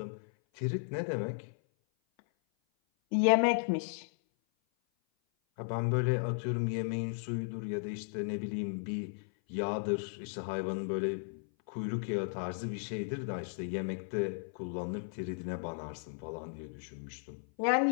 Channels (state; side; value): silent; right; 54 dB below the other